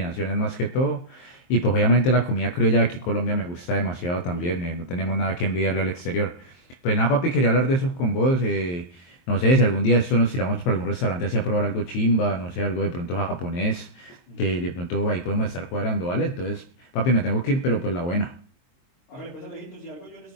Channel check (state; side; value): late; right; 23 ms